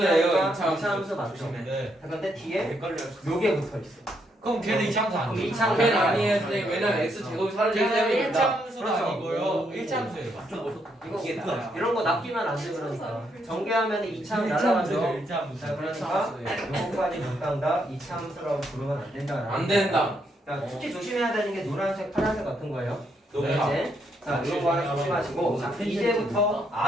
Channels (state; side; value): normal; both; correlation 0.76